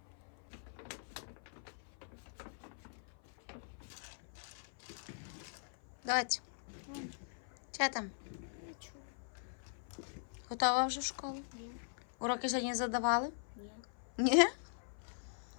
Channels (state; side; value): silent; right; 50 dB below the other